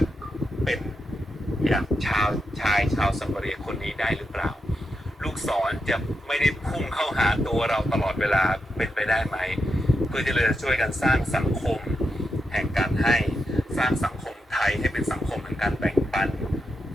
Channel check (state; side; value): normal; both; correlation 0.86